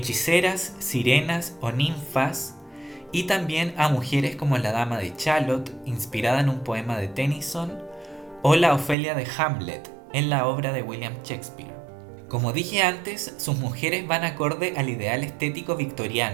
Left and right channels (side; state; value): left; drops out; at 9.0 s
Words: sirenas o ninfas, y también a mujeres como la Dama de Shalott, inspirada en un poema de Tennyson, o la Ofelia de Hamlet, en la obra de William Shakespeare. Como dije antes, sus mujeres van acorde al ideal estético